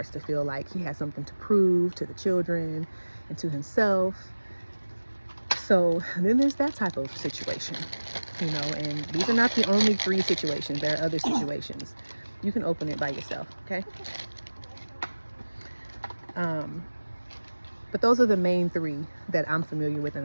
to feel like he has something to prove to the children and to himself. So then there's that type of situation, you know, and these are not the only 3 situations. There are other situations. You can open it by yourself, okay? But those are the main 3 that I'm familiar with and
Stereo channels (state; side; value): inverted; both; correlation -1.00